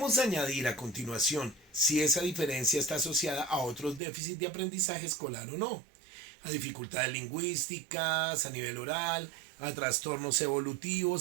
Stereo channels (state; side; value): drops out; left; at 4.0 s